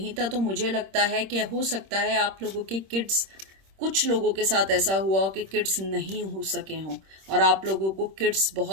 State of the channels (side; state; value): left; late; 26 ms